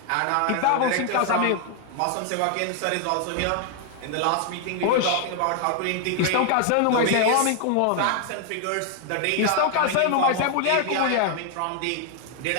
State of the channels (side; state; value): both; different; correlation 0.00